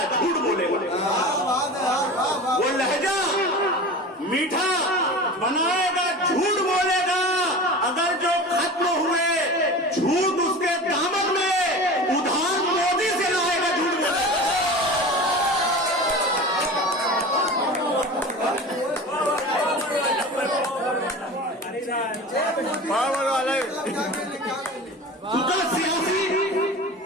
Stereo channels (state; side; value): normal; both; correlation 0.33